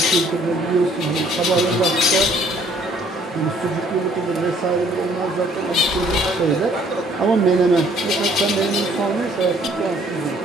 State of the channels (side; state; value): both; normal; correlation 0.60